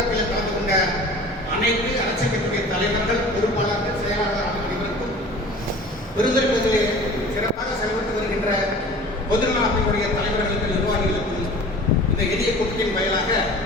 கலந்து கொண்ட அனைத்து அரசியல் கட்சியுடைய தலைவர்கள், பொறுப்பாளர்கள், செயலாளர் அனைவருக்கும், பெருந்துறை பகுதியில் சிறப்பாக செயல்பட்டு வருகின்ற பொதுநல அமைப்புடைய தலைவர்களுக்கு, நிர்வாகிகளுக்கும் இந்த எளிய கூட்டத்தின் வாயிலாக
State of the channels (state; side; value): normal; both; correlation 0.42